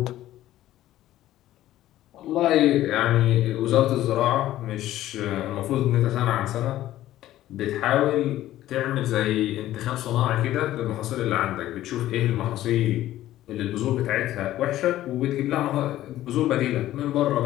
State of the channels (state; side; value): quieter; right; 14.0 dB